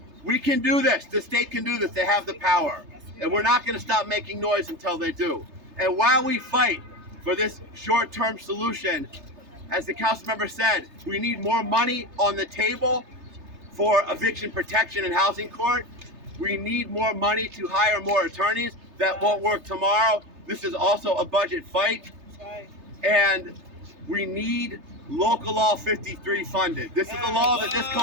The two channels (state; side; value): late; left; 3.3 ms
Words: We can do this. The state can do this. They have the power. And we're not going to stop making noise until they do. And while we fight for this short-term solution, as the council member said, we need more money on the table for eviction protection and housing court. We need more money to hire more attorneys. That won't work tomorrow. This is also a budget fight. And we need Local Law 53 funded. This is a law that this